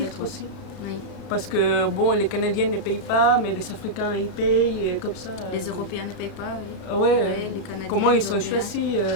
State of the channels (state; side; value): late; right; 26 ms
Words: filtre être. aussi. Oui. Parce que les Canadiens ne payent pas, mais les Africains ils payent, et comme ça. Les Européens ne payent pas, oui. Ouais, Les Canadiens, comment les ils sont Européens. choisis,